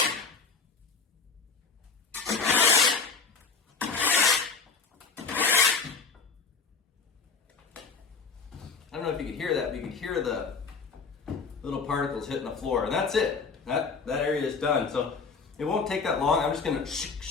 I don't know if you could hear that, but you could hear the little particles hitting the floor, and that's it. That area is done. So it won't take that long. I'm just gonna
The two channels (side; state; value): right; quieter; 4.9 dB